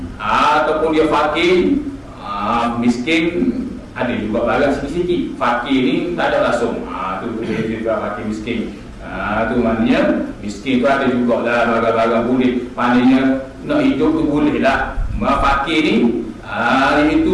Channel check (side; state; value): both; identical; correlation 1.00